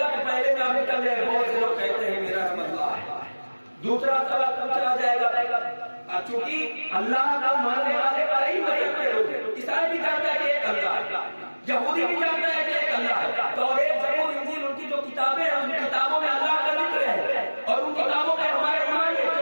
کہ پہلے نام نکل جائے، بہت سے لوگ کہتے ہیں میرا رب اللہ ہے۔ دوسرا سوال پوچھا جائے گا، چونکہ اللہ کا ماننے والے کئی مذہب کے لوگ ہیں، عیسائی بھی جانتا ہے کہ ایک اللہ ہے، یہودی بھی جانتا ہے کہ ایک اللہ ہے، توریت، زبور، انجیل، ان کی جو کتابیں ہیں ان کتابوں میں اللہ کا ذکر ہے، اور ان کتابوں پہ ہمارا ایمان ہے،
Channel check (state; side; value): inverted; both; correlation -1.00